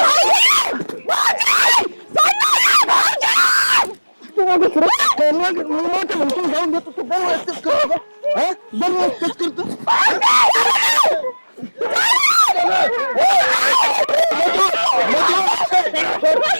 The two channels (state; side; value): inverted; both; correlation -1.00